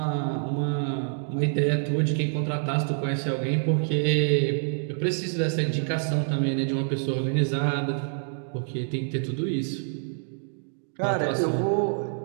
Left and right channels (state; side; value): silent; left; digital silence